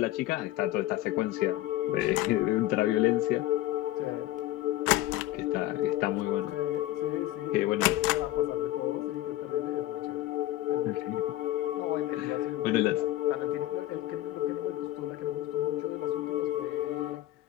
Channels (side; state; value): right; quieter; 15.3 dB